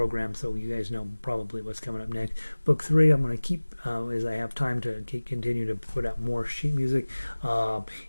so you guys know probably what's coming up next. Book 3, I'm going to keep as I have time to continue to put out more sheet music,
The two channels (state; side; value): inverted; both; correlation -1.00